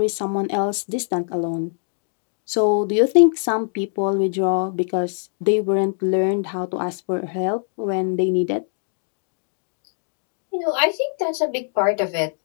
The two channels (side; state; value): right; silent; digital silence